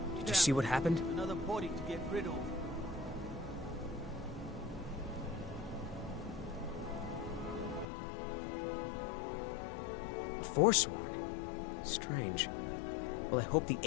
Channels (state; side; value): drops out; right; at 7.9 s